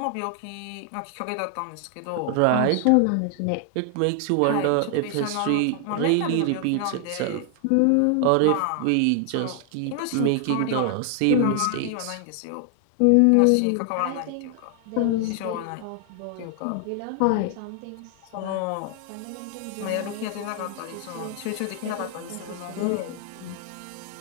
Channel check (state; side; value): different; both; correlation 0.00